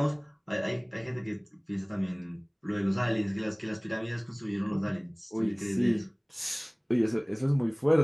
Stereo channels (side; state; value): both; identical; correlation 1.00